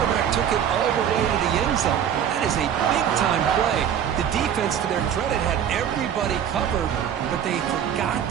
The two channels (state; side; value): quieter; left; 9.1 dB